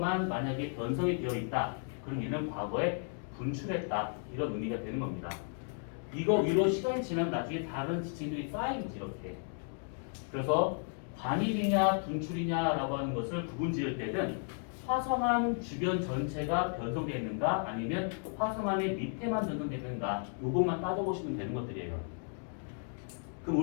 만약에 변성이 되어 있다, 그럼 얘는 과거에 분출했다 이런 의미가 되는 겁니다. 이거 위로 시간이 지나면 나중에 다른 지층들이 쌓이지 이렇게. 그래서 관입이냐 분출이냐라고 하는 것을 구분 지을 때는 화성암 주변 전체가 변성되어 있는가 아니면 화성암의 밑에만 변성되어 있는가 요것만 따져보시면 되는 것들이에요. 그럼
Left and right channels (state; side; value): silent; right; 55 dB below the other